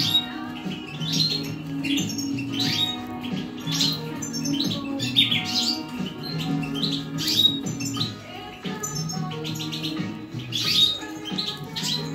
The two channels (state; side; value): identical; both; correlation 1.00